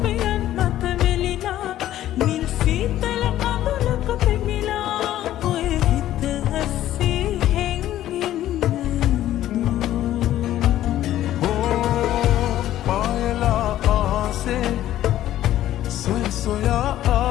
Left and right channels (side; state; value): right; quieter; 13.1 dB